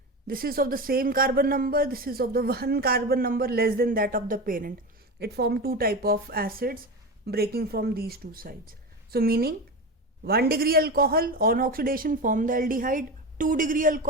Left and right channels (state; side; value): normal; both; correlation 0.23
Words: This is of the same carbon number, this is of the one carbon number less than that of the parent. It forms two type of acids breaking from these two sides. So meaning 1 degree alcohol on oxidation form the aldehyde, 2 degree